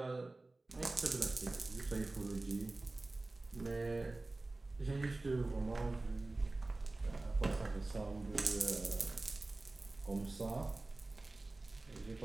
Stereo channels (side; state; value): left; quieter; 3.1 dB